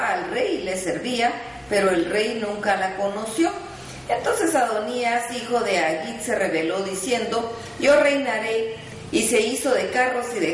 al rey y le servía, pero el rey nunca la conoció. Entonces Adonías, hijo de Agit, se rebeló diciendo: yo reinaré. Y se hizo de carros y de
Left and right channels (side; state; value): both; identical; correlation 1.00